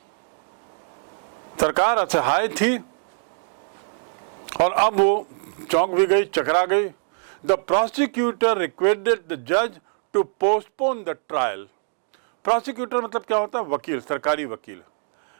सरकार असहाय थी और अब वो चौंक भी गई, चकरा गई। द प्रोसिक्यूटर रिक्वेस्टेड द जज to postpone the trial. Prosecutor मतलब क्या होता है? वकील, सरकारी वकील।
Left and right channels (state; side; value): silent; left; digital silence